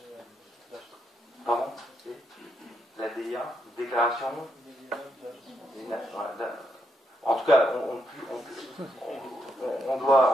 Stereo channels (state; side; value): normal; both; correlation 0.79